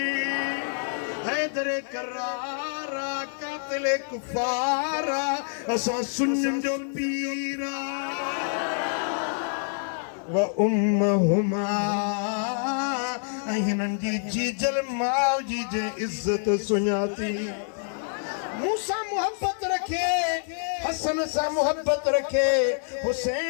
हैदर करारा कातिल कुफारा असां सुन्नियुनि जो पीर व उम्मुहुमा ऐं हिननि जी जीजल माउ जी जे इज़त सुञाती। मूंसां मुहबत रखे, हसन सां मुहबत रखे,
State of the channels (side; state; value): right; silent; digital silence